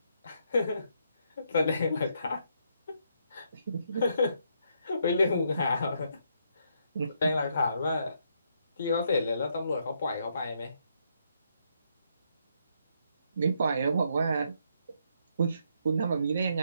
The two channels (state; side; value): inverted; both; correlation -0.75